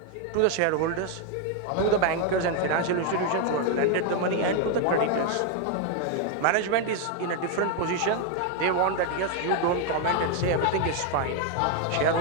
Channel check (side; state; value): both; different; correlation 0.01